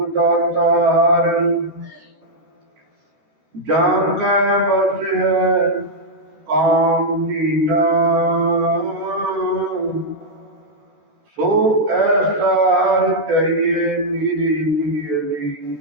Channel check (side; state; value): left; late; 14 ms